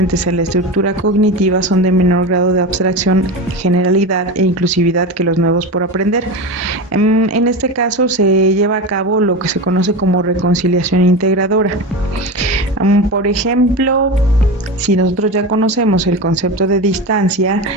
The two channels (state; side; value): normal; both; correlation 0.23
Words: en la estructura cognitiva son de menor grado de abstracción, generalidad e inclusividad que los nuevos por aprender. En este caso, se lleva a cabo lo que se conoce como reconciliación integradora. Por ejemplo, si nosotros ya conocemos el concepto de distancia